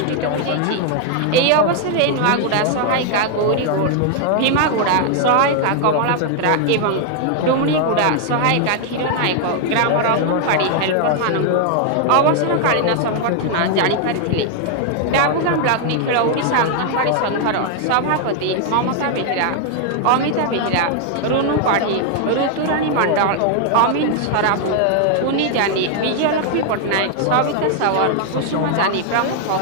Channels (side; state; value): both; different; correlation 0.00